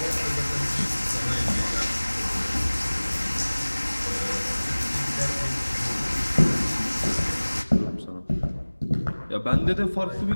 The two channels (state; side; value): inverted; both; correlation -1.00